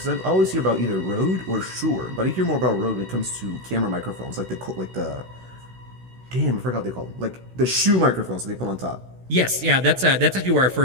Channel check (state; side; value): late; left; 16 ms